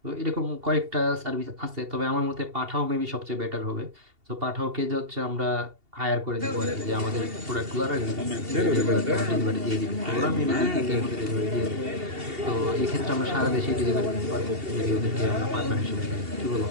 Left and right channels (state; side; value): late; left; 2.7 ms